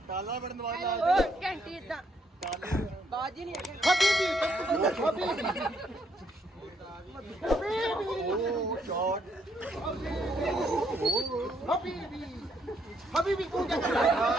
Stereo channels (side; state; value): both; normal; correlation 0.72